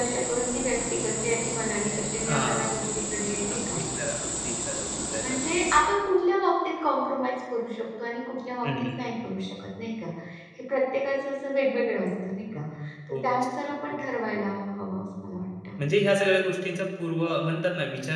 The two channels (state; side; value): identical; both; correlation 1.00